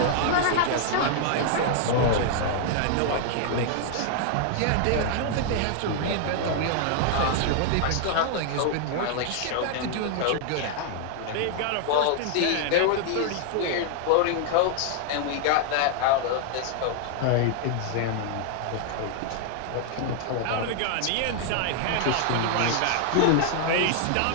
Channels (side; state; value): both; different; correlation 0.00